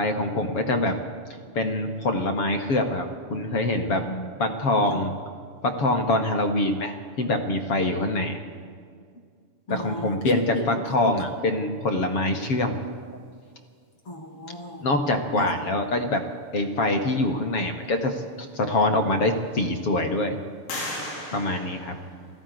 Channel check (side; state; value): right; late; 7.2 ms